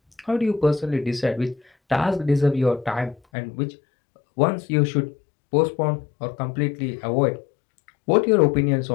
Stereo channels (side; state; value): right; drops out; at 3.2 s